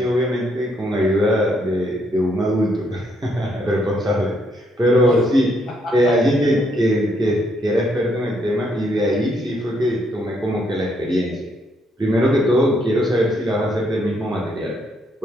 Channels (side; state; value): both; normal; correlation 0.73